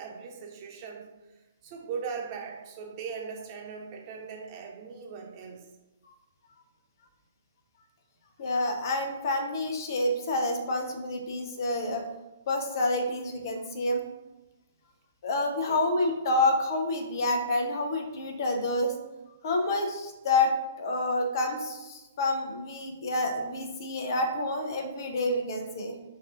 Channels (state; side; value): inverted; both; correlation -0.51